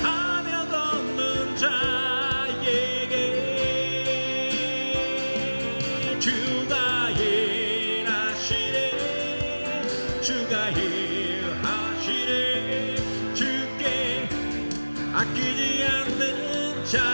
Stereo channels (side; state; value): both; inverted; correlation -1.00